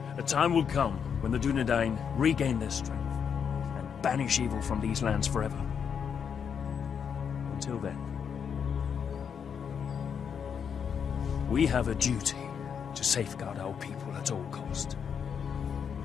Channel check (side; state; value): right; quieter; 7.2 dB